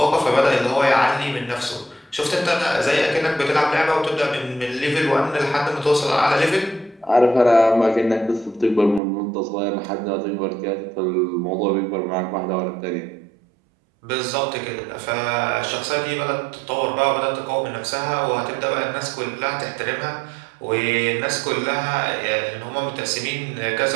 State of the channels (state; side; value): drops out; left; at 9.0 s